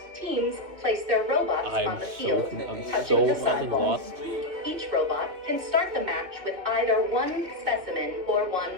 Teams place their robots on the field, touching the sidewalls. Each robot can start the match with either one specimen or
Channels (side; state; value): left; late; 2.5 ms